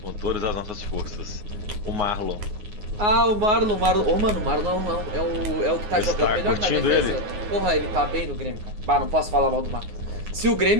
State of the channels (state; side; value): late; left; 9.6 ms